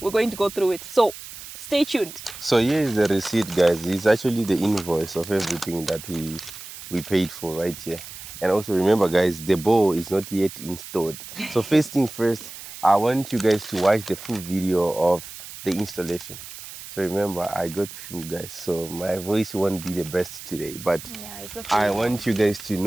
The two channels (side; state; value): right; noise; hiss, 13 dB below the sound